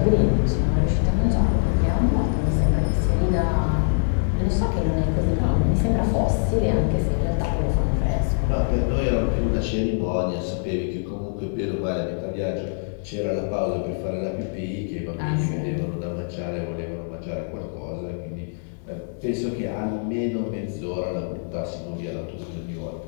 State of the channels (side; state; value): right; silent; digital silence